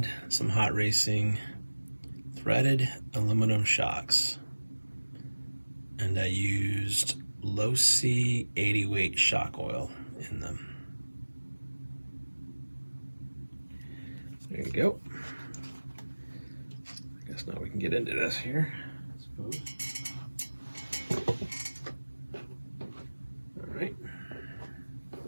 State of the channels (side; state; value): both; inverted; correlation -1.00